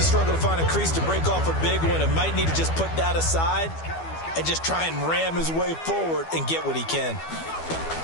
struggle to find a crease to break off a big one and might need to just put that aside and just try and ram his way forward and get what he can.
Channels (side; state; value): right; late; 12 ms